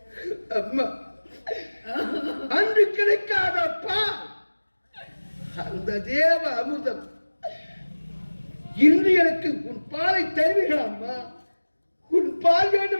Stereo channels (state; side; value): inverted; both; correlation -1.00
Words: அம்மா, அன்று கிடைக்காதப்பா அந்த தேவ அமிர்தம் இன்று எனக்கு உன் பாலை தருவீர்கள் அம்மா. உன் பால்